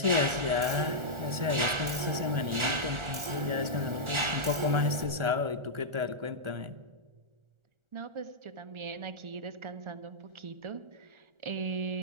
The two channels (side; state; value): left; late; 1.4 ms